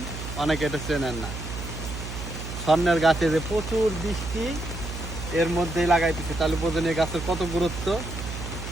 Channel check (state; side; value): noise; right; hum, 8 dB below the sound